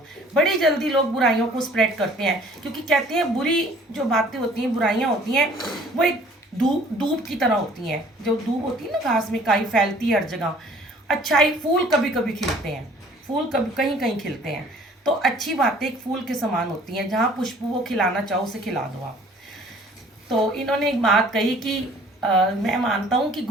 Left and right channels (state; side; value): normal; both; correlation 0.54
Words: बड़ी जल्दी लोग बुराइयों को स्प्रेड करते हैं, क्योंकि कहते हैं बुरी जो बातें होती हैं, बुराइयाँ होती हैं, वो एक धूप की तरह होती हैं। जो धूप होती है ना, घास में काई फैलती है हर जगह। अच्छाई फूल कभी कभी खिलते हैं, फूल कभी कहीं कहीं खिलते हैं, तो अच्छी बातें एक फूल के समान होती हैं, जहाँ पुष्प वो खिलाना चाहो उसे खिला दो आप। तो इन्होंने एक बात कही कि मैं मानता हूँ कि